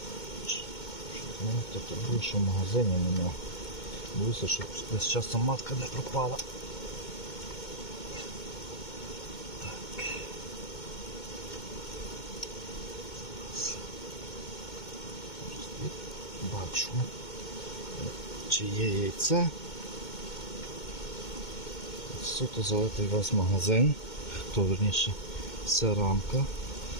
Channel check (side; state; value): right; late; 2.2 ms